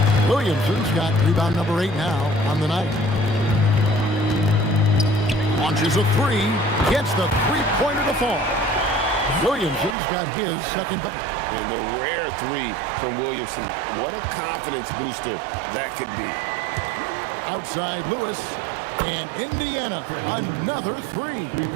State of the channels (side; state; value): left; drops out; at 10.0 s